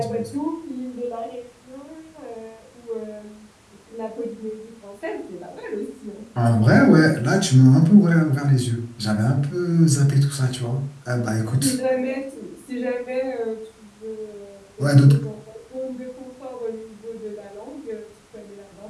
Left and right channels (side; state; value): both; identical; correlation 1.00